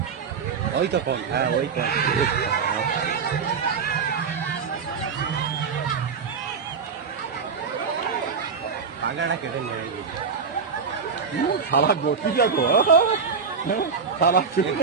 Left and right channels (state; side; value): quieter; left; 5.7 dB